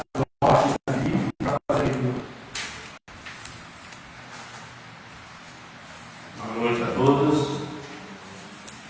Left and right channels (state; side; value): identical; both; correlation 1.00